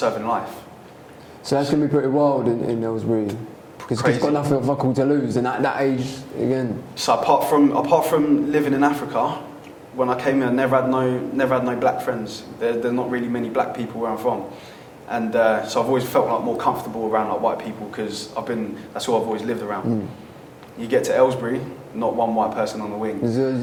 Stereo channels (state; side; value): identical; both; correlation 1.00